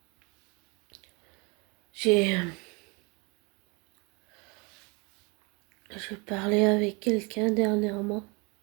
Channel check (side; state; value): left; quieter; 30.0 dB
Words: J'ai je parlais avec quelqu'un dernièrement.